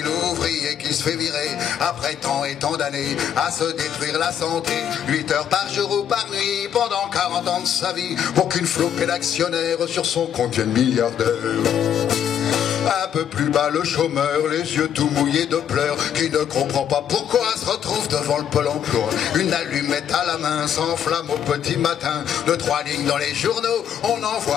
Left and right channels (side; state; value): right; quieter; 9.1 dB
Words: l'ouvrier qui se fait virer, après tant et tant d'années, à se détruire la santé, 8 heures par jour ou par nuit, pendant 40 ans de sa vie, pour qu'une flopée d'actionnaires sur son compte devienne milliardaire. Un peu plus bas le chômeur, les yeux tout mouillés de pleurs, qui ne comprend pas pourquoi se retrouve devant le Pôle emploi. Une allumette à la main s'enflamme au petit matin, de 3 lignes dans les journaux, on